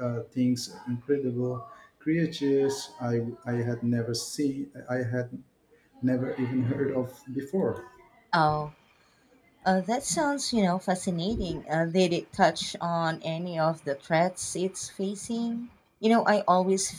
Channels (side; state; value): both; identical; correlation 1.00